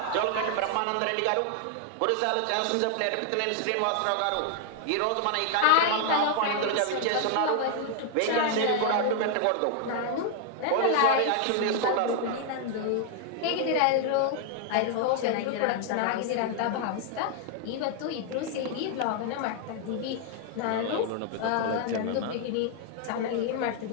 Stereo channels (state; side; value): different; both; correlation 0.00